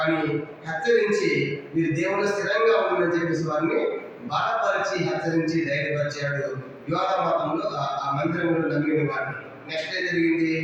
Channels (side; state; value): both; identical; correlation 1.00